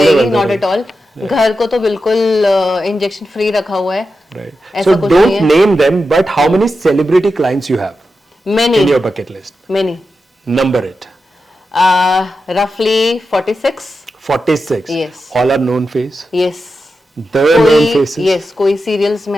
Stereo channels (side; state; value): both; normal; correlation 0.90